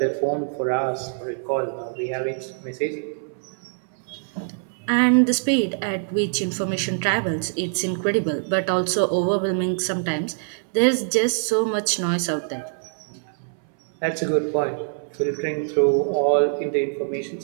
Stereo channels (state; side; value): silent; left; 62 dB below the other